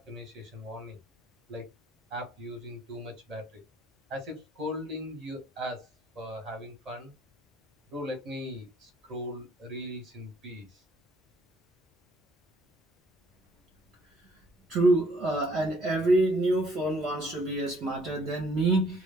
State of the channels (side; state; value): both; normal; correlation 0.63